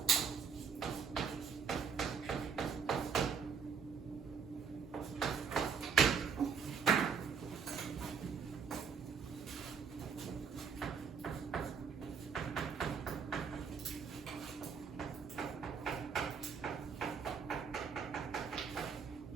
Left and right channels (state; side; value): quieter; left; 6.2 dB